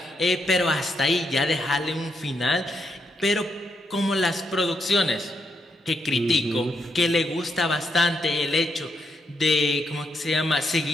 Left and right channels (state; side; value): normal; both; correlation 0.80